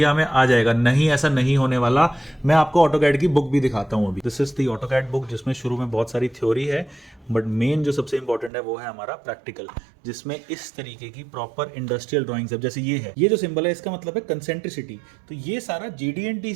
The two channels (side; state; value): left; drops out; at 8.5 s